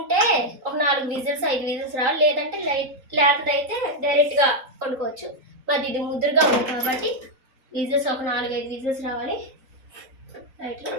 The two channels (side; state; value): left; late; 3.9 ms